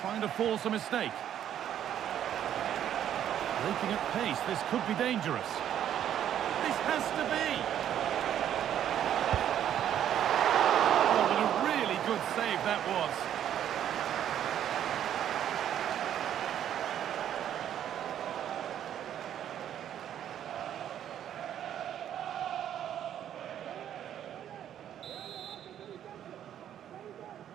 Trying to force a mistake. Breaking at pace, this could be dangerous. This has to be! Oh, what a really good save that was.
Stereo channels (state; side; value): quieter; left; 10.3 dB